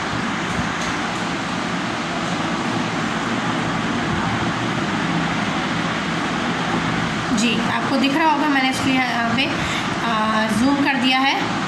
जी, आपको दिख रहा होगा, मैंने इसलिए यहाँ पे जूम कर दिया है,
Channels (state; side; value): identical; both; correlation 1.00